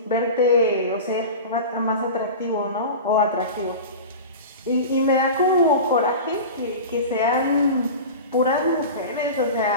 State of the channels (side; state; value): both; inverted; correlation -0.30